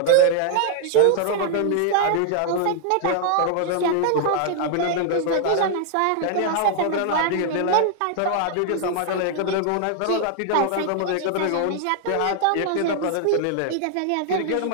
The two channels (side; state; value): both; different; correlation 0.00